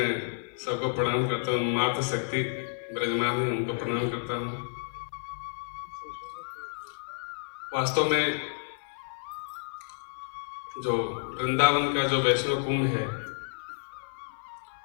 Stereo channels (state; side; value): silent; right; 56 dB below the other